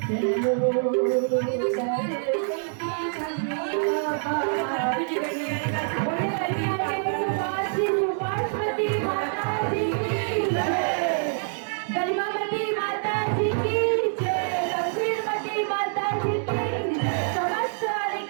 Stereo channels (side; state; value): left; silent; 58 dB below the other